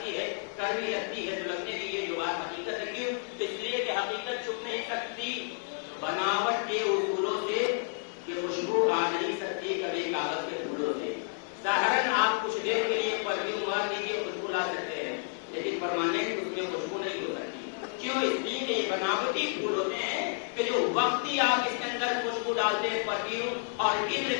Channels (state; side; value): silent; right; 57 dB below the other